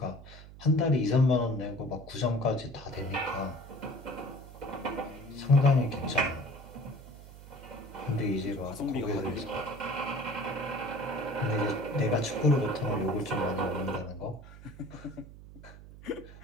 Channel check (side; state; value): right; noise; hum, 17 dB below the sound